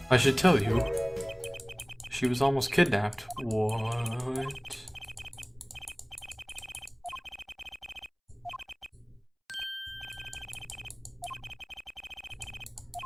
I should tell you. She was almost kidnapped. What?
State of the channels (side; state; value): both; identical; correlation 1.00